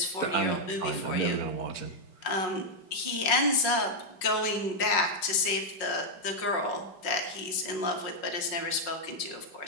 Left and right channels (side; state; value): right; late; 5.5 ms